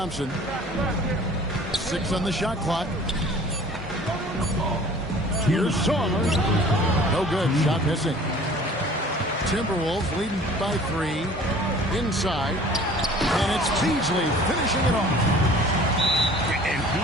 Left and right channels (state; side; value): normal; both; correlation 0.48